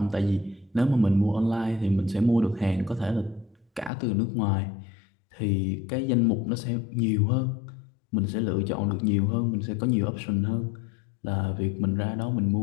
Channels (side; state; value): right; drops out; at 3.9 s